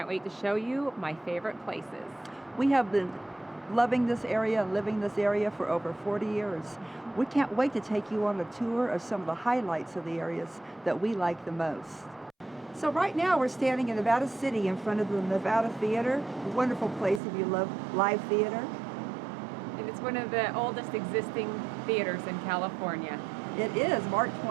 wait to show you my favorite places. We have been loving this area and living this area for over 40 years. We can't wait to take you on a tour of some of the highlights of the areas that we like the most. So right now we're standing in Nevada City in front of the Nevada Theater, a wonderful place if you love live theater. And it's one of the oldest existing theaters in California. It is. Mark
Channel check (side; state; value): left; drops out; at 17.2 s